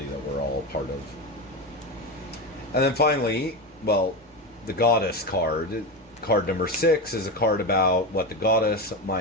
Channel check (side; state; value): both; normal; correlation 0.18